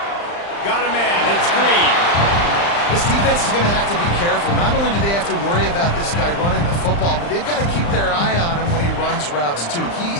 Got a man. It's Green. This defense is going to have to be careful. Not only do they have to worry about this guy running the football, but they've got to keep their eye on him when he runs routes, too.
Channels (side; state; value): right; late; 35 ms